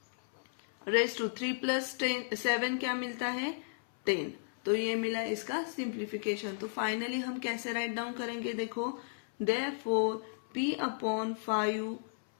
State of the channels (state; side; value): silent; right; 55 dB below the other